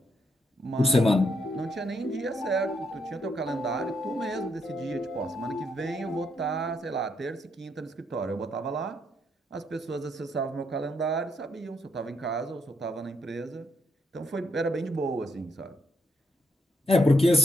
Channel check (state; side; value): normal; both; correlation 0.76